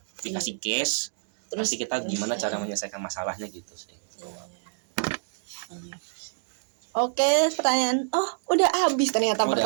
Dikasih case, terus kita gimana cara menyelesaikan masalahnya gitu sih. Oke, pertanyaan. Udah habis ternyata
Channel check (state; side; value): silent; left; digital silence